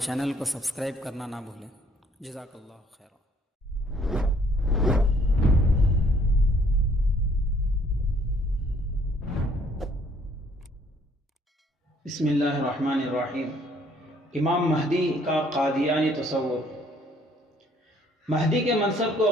چینل کو سبسکرائب کرنا نہ بھولیں۔ جزاک اللہ خیر۔ بسم اللہ الرحمن الرحیم۔ امام مہدی کا قادیانی تصور۔ مہدی کے منصب کو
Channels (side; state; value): both; normal; correlation 0.62